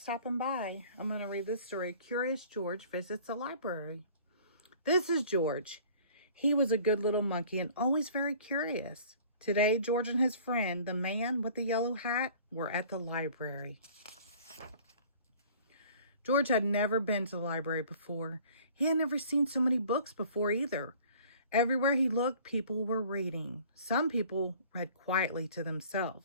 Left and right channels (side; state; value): both; inverted; correlation -0.50